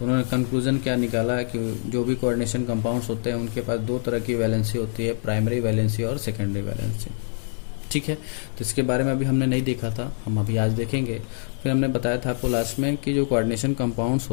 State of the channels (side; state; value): right; silent; 62 dB below the other